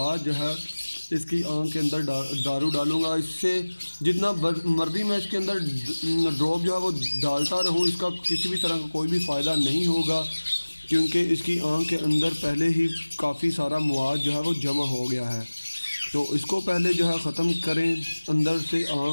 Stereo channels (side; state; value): both; inverted; correlation -1.00